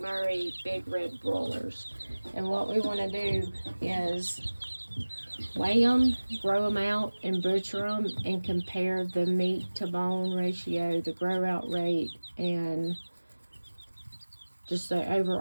big red broilers. And what we want to do is weigh them, grow them out, and butcher them, and compare the meat to bone ratio, the grow out rate, and just the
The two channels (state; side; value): inverted; both; correlation -1.00